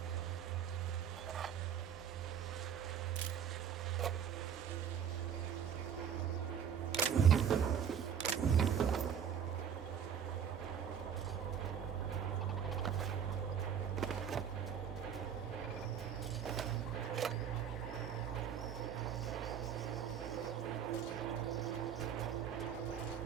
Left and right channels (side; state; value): left; quieter; 8.2 dB